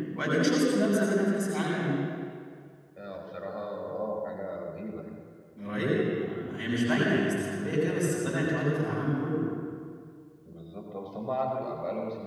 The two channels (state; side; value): identical; both; correlation 1.00